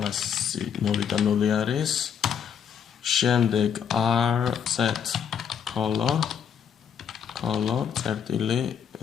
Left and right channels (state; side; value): quieter; right; 7.9 dB